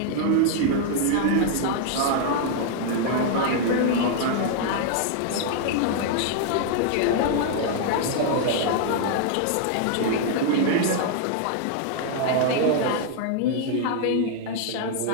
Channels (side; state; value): both; different; correlation 0.00